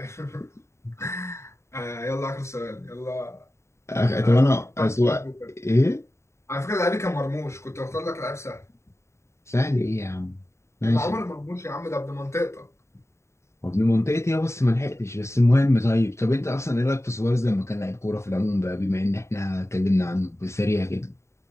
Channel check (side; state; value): right; late; 0.14 ms